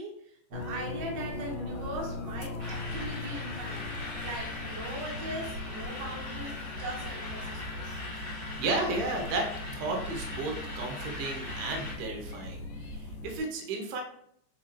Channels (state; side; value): late; left; 15 ms